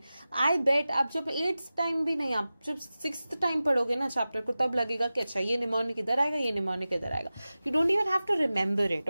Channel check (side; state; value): both; inverted; correlation -0.95